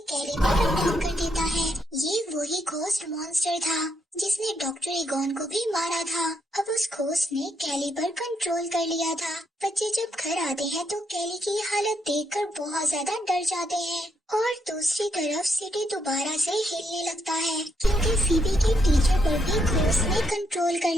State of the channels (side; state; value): both; normal; correlation 0.77